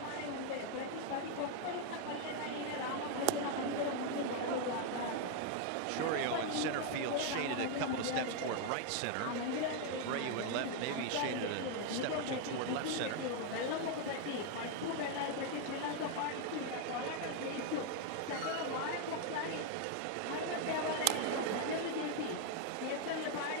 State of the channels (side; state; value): both; different; correlation 0.00